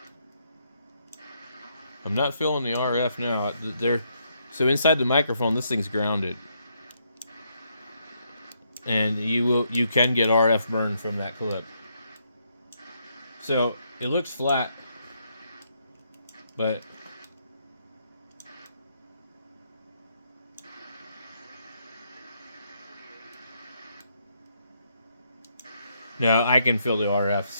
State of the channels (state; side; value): inverted; both; correlation -0.75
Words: I'm not feeling the RF now. So inside the microphone, this thing's grounded, and you can get RF burn from that clip. So it looks flat, but no, I can feel the RF.